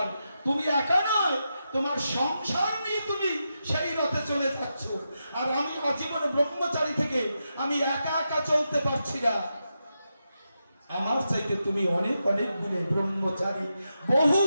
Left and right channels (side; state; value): both; inverted; correlation -0.87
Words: তুমি একা নয়, তোমার সংসার নিয়ে তুমি সেই রথে চলে যাচ্ছ, আর আমি আজীবন ব্রহ্মচারী থেকে আমি একা একা চলতে পারছি না। আমার চাইতে তুমি অনেক অনেক গুণে ব্রহ্মচারী, বহু